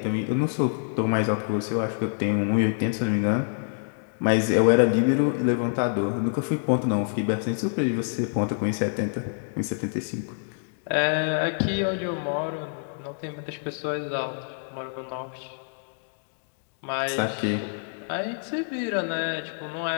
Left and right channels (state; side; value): silent; right; digital silence